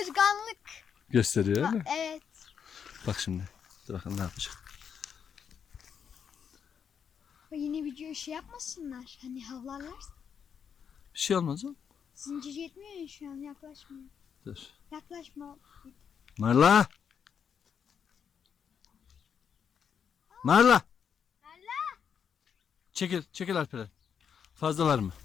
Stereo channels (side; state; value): right; quieter; 7.4 dB